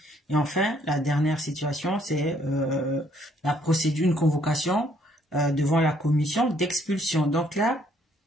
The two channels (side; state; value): both; normal; correlation 0.66